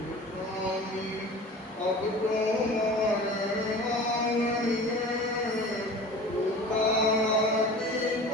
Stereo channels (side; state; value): both; normal; correlation 0.39